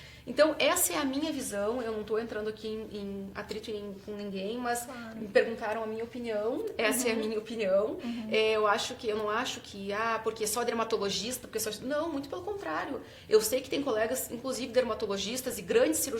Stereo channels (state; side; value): identical; both; correlation 1.00